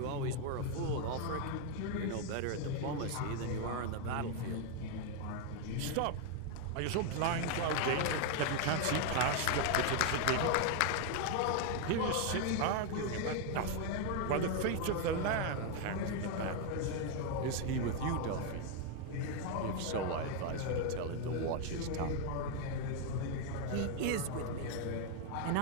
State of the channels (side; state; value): both; different; correlation 0.01